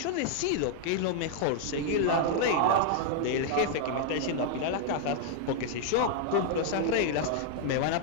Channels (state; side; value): different; both; correlation -0.01